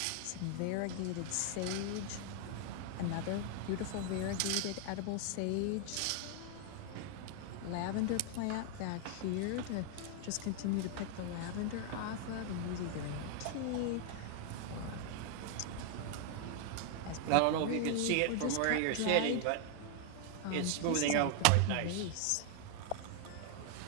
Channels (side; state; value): both; different; correlation 0.00